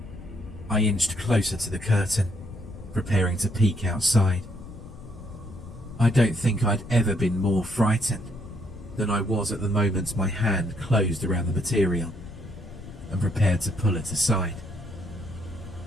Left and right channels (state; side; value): noise; left; rumble, 14 dB below the sound